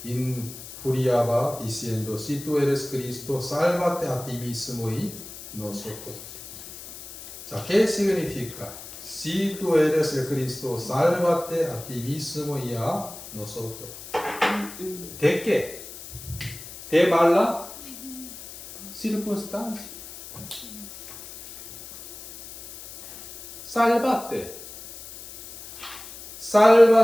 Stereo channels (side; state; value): left; noise; hiss, 14 dB below the sound